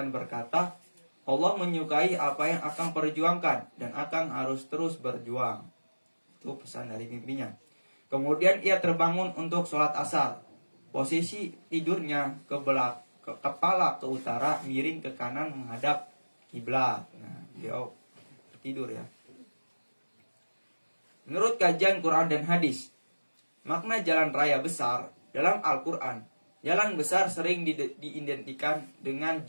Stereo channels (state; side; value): inverted; both; correlation -1.00